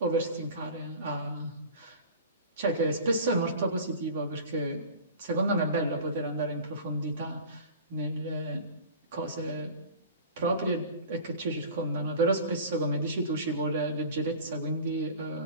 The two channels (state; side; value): inverted; both; correlation -0.38